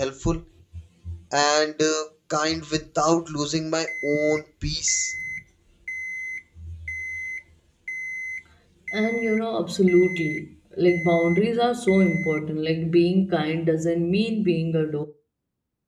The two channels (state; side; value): identical; both; correlation 1.00